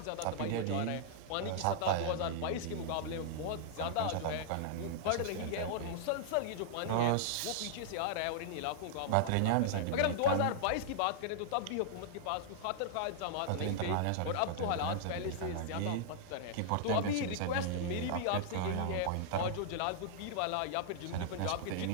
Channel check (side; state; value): both; different; correlation -0.01